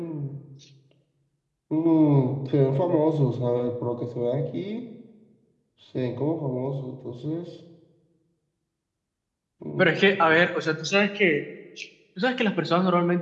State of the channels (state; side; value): identical; both; correlation 1.00